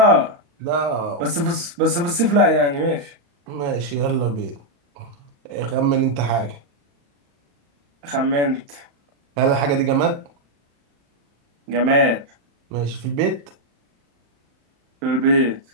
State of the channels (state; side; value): late; left; 35 ms